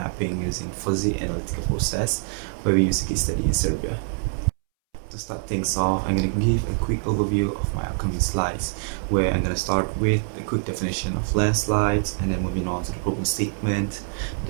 using Fuzzy Analytical Process, where we use a case study in Serbia. To start things off, I'm going to give a quick overview of my upcoming slides, where I'm going to start with a quick definition of landslides, and then moving on to the problem statement,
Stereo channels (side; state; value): left; silent; 62 dB below the other